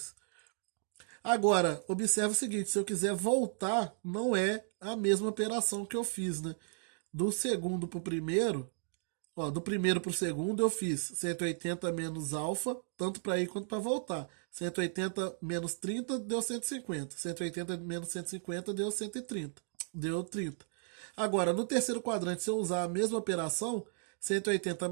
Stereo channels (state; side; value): silent; left; digital silence